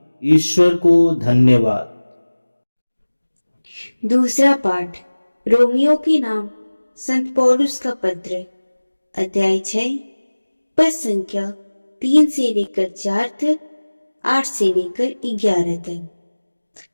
ईश्वर को धन्यवाद। दूसरा पाठ रोमियो के नाम संत पौलुस का पत्र अध्याय 6 पद संख्या 3 से लेकर 4 तक, 8 से लेकर 11 तक।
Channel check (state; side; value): inverted; both; correlation -1.00